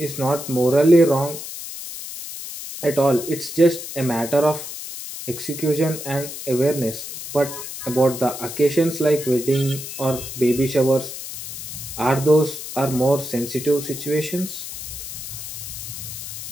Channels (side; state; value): left; noise; hiss, 9 dB below the sound